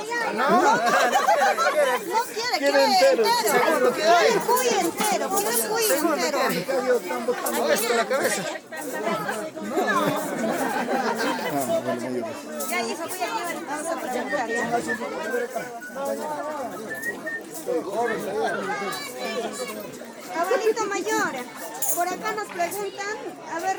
No quiere entero. Quiere cuy entero. Esto la cabeza. Ya, hijo, voy a llevar. Vamos a presentar, ya. Abuelito mayor, por acá nos preguntan, a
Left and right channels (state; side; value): identical; both; correlation 1.00